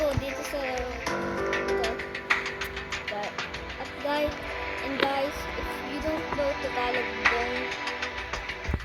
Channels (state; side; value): identical; both; correlation 1.00